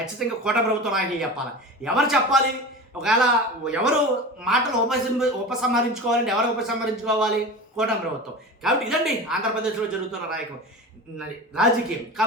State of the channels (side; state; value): both; normal; correlation 0.31